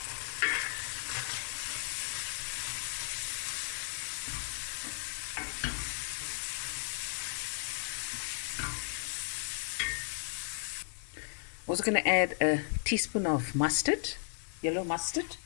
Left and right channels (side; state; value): right; silent; digital silence